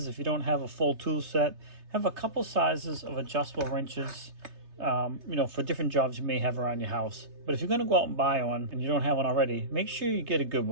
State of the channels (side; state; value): left; late; 3.3 ms